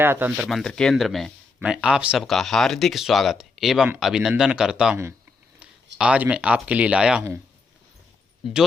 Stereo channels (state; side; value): quieter; right; 4.2 dB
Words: तंत्र मंत्र केंद्र में मैं आप सबका हार्दिक स्वागत एवं अभिनंदन करता हूं। आज मैं आपके लिए लाया हूं